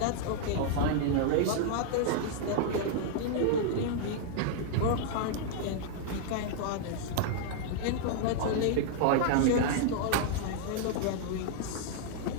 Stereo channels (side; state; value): both; different; correlation -0.01